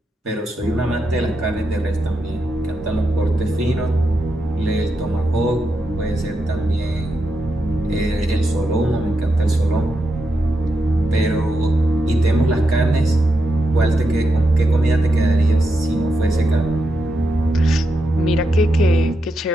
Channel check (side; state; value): both; normal; correlation 0.85